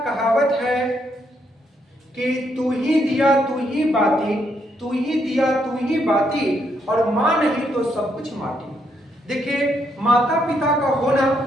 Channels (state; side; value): normal; both; correlation 0.75